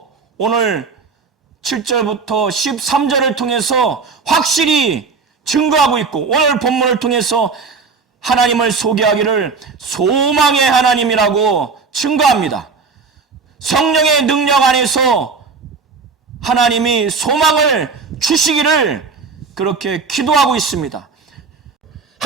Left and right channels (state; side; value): quieter; left; 4.8 dB